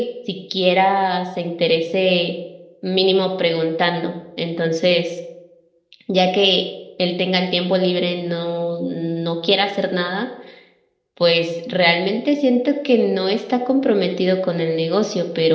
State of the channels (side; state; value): both; identical; correlation 1.00